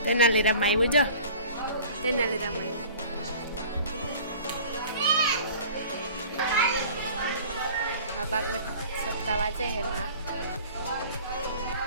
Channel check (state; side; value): inverted; both; correlation -0.45